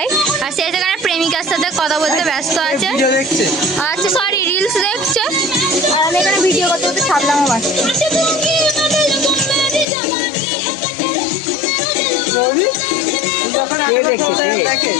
আর সে সেখানে প্রেমিকার সাথে কথা বলতে ব্যস্ত আছে। ভিডিও দেখছে। আচ্ছা সরি, রিলস দেখছে। আর আমি এখানে ভিডিও করতে করতে ছাপলামও বাসছে। কে দেখছে?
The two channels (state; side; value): drops out; right; at 9.9 s